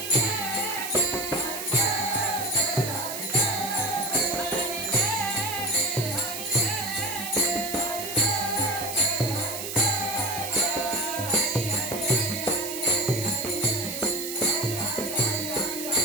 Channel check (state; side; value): noise; right; hiss, 6 dB below the sound